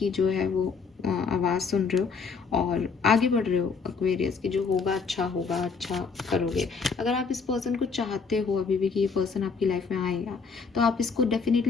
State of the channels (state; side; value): quieter; right; 5.2 dB